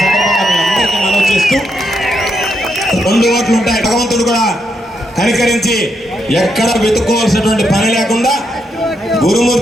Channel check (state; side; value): normal; both; correlation 0.80